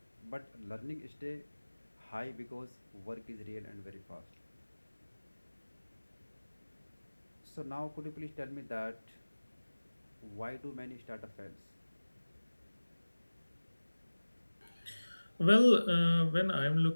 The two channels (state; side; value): inverted; both; correlation -1.00